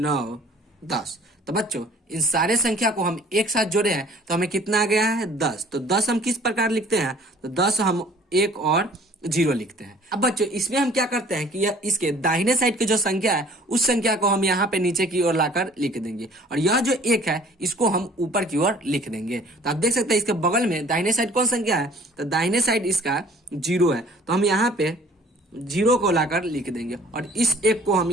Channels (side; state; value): both; normal; correlation 0.52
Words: 10। तो बच्चों, इन सारे संख्या को हम एक साथ जोड़े हैं तो हमें कितना आ गया है? 10। तो 10 हम किस प्रकार लिखते हैं? तो 10 हम 1 और 0 लिखते हैं। अब बच्चों इसमें हम क्या करते हैं कि यह इसके दाहिने साइड की जो संख्या है उस संख्या को हम यहाँ पे नीचे की ओर लाकर लिख देंगे, और यह जो 1 है इसको हम ऊपर की ओर लिख देंगे। तो आप देख सकते हैं इसके बगल में दाहिने साइड कौन संख्या है, तो दाहिने साइड इसका 0 है, तो हम यहाँ पे 0 को लाकर लिख देंगे और इस 1 को हम